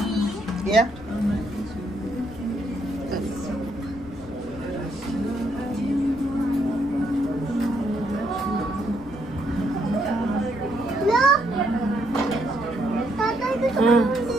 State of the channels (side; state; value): left; noise; rumble, 23 dB below the sound